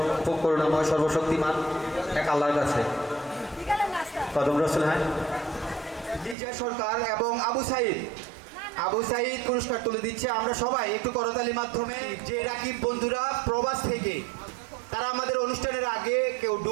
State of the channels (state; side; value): drops out; left; at 6.4 s